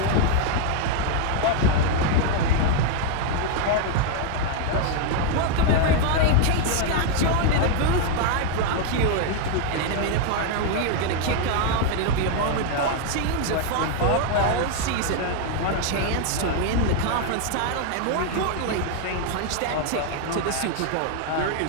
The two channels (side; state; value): both; different; correlation 0.00